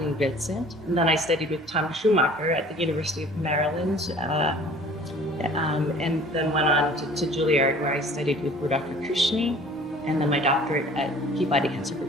Vincent. And then I studied with Tom Schumacher at the University of Maryland, and then went on to Juilliard, where I studied with Rudolph Kushny, and then my doctorate at Peabody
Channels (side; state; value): both; normal; correlation 0.49